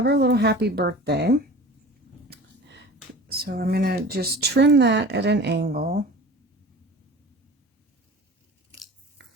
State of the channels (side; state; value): both; normal; correlation 0.39